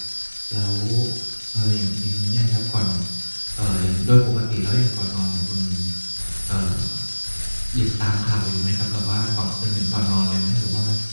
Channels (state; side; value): inverted; both; correlation -1.00